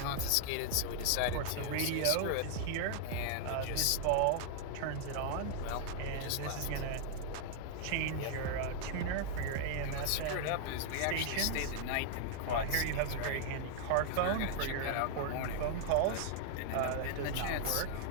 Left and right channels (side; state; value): both; different; correlation -0.01